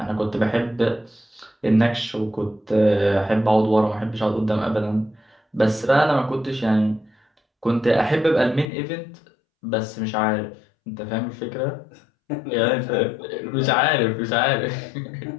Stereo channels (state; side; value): drops out; right; at 8.7 s